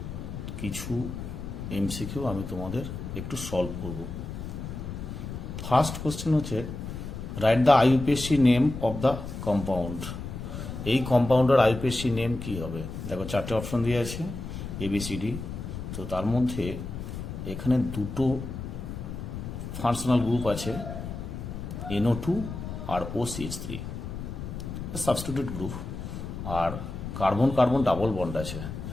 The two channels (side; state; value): left; noise; rumble, 7 dB below the sound